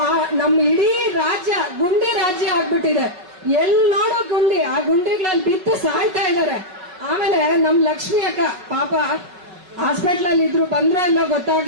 ನಮ್ಮ ಇಡೀ ರಾಜ್ಯ ಗುಂಡಿ ರಾಜ್ಯ ಆಗ್ಬಿಟ್ಟಿದೆ. ಎಲ್ ನೋಡೋ ಗುಂಡಿ, ಆ ಗುಂಡಿಗಳಲ್ಲಿ ಬಿತ್ತು ಸಾಯ್ತಾ ಇದ್ದಾರೆ. ಆಮೇಲೆ ನಮ್ ಲಕ್ಷ್ಮಿ ಅಕ್ಕ ಪಾಪ ಹಾಸ್ಪಿಟಲ್ ಅಲ್ಲಿ ಇದ್ರು, ಬಂದ್ರೆ ಎಲ್ಲ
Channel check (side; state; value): left; late; 5.4 ms